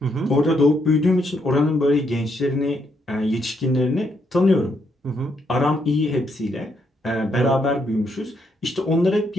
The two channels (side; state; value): both; normal; correlation 0.76